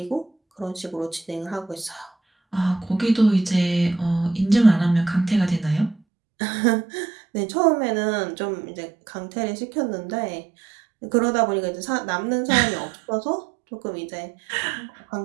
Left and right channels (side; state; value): left; drops out; at 6.0 s